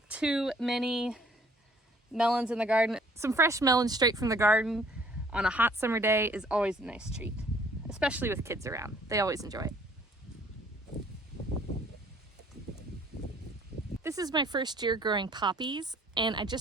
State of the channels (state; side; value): normal; both; correlation 0.58